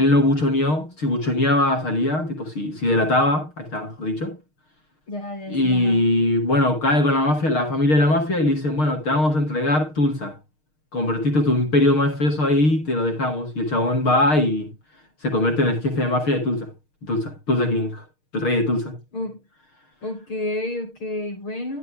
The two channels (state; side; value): late; right; 6.5 ms